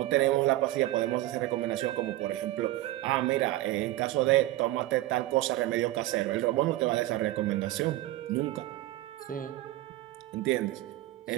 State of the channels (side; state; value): left; quieter; 16.3 dB